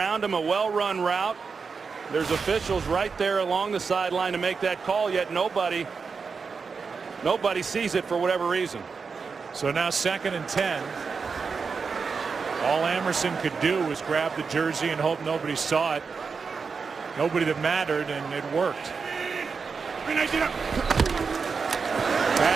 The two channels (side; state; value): left; quieter; 5.2 dB